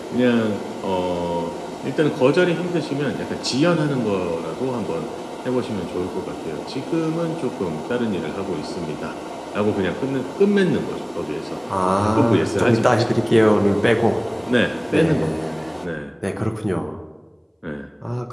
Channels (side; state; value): both; identical; correlation 1.00